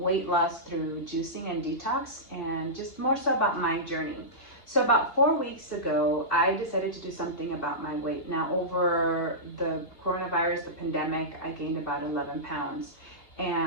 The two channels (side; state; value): right; late; 2.8 ms